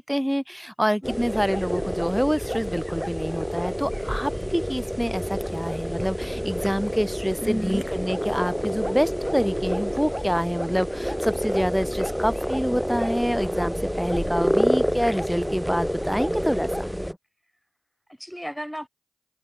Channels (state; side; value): identical; both; correlation 1.00